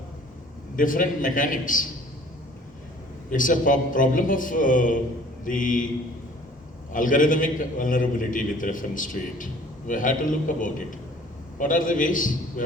different mechanics. It's a problem of the algorithmic vulnerability with reference to it. We have to look about it. What are the ways? We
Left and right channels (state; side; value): normal; both; correlation 0.52